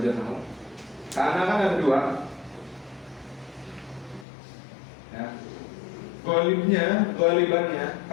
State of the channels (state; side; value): drops out; right; at 4.2 s